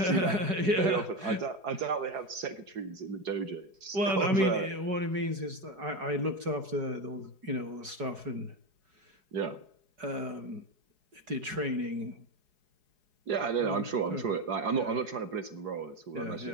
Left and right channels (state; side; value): late; left; 4.8 ms